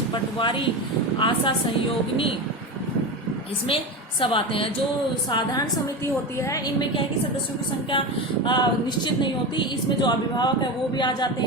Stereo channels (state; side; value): normal; both; correlation 0.22